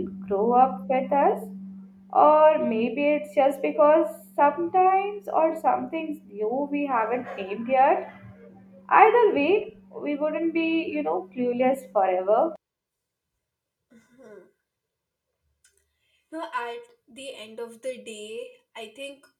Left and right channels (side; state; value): both; identical; correlation 1.00